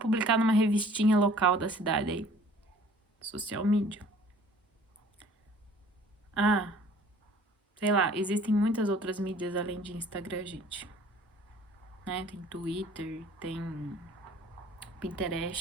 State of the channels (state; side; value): normal; both; correlation 0.52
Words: numa revistinha local da cidade aí, social media. Ah, sei lá, existem muitas outras mídias além de Instagram, gente. Né? Tem Twitter, tem